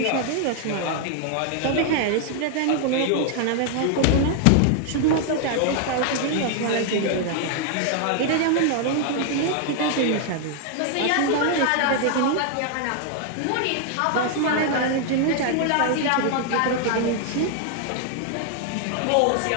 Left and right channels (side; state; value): both; different; correlation 0.00